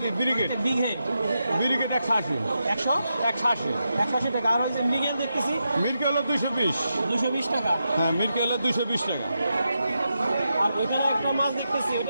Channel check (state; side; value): inverted; both; correlation -0.86